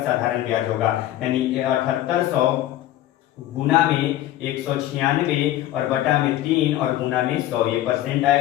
साधारण ब्याज होगा। यानी 7800 गुना में 196 और बटा में 3 और गुना में 100, ये परसेंट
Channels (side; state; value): right; quieter; 13.8 dB